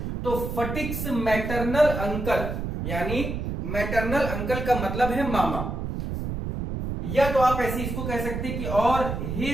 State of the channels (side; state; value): right; noise; rumble, 4 dB below the sound